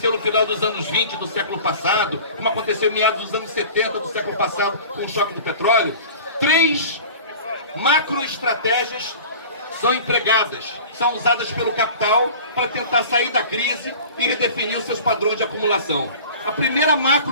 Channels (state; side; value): inverted; both; correlation -0.41